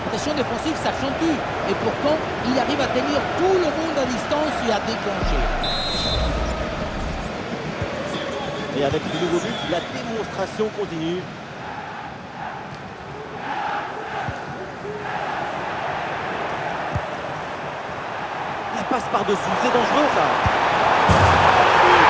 défensive s'accentue. Et pourtant, il arrive à tenir tout le monde à distance et à déclencher. Et avec ce nouveau but, la démonstration continue. La passe par-dessus, c'est dangereux ça.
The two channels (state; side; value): identical; both; correlation 1.00